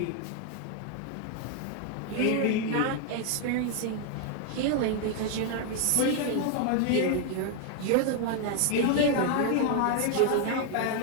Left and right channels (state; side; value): different; both; correlation 0.00